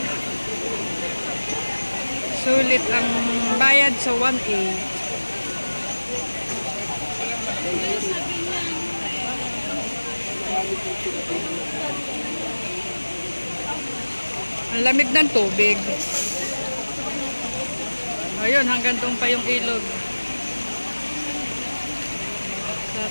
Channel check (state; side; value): inverted; both; correlation -1.00